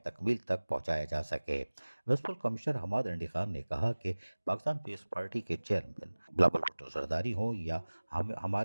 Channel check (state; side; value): inverted; both; correlation -1.00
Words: تک پہنچایا جا سکے۔ میونسپل کمشنر حماد انڈی خان نے کہا کہ پاکستان پیپلز پارٹی کے چیئرمین بلاول بھٹو زرداری ہوں یا